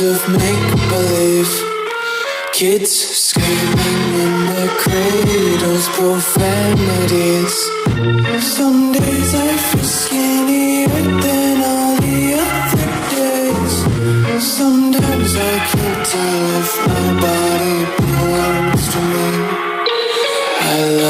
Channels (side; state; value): both; identical; correlation 1.00